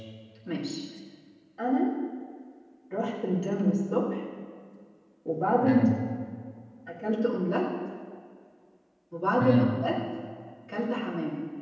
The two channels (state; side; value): identical; both; correlation 1.00